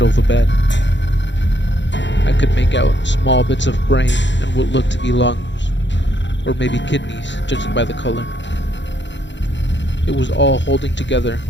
of the bed. I could make out small bits of brain and what looked to be lungs, or maybe kidneys, judging by the color. It was all holding together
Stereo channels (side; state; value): right; late; 0.53 ms